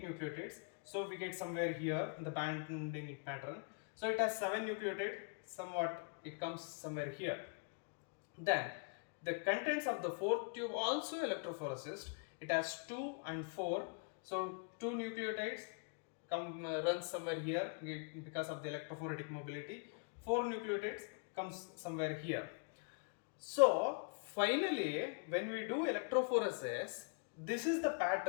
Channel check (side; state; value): right; quieter; 39.0 dB